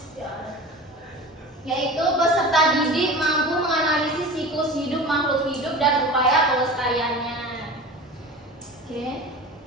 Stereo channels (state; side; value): normal; both; correlation 0.35